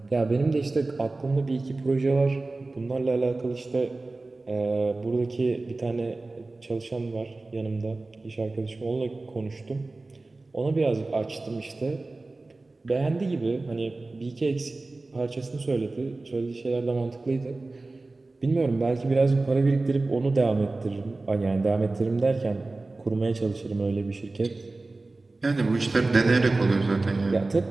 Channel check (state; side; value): quieter; left; 3.3 dB